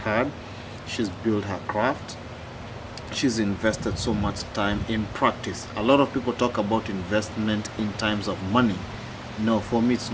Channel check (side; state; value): both; identical; correlation 1.00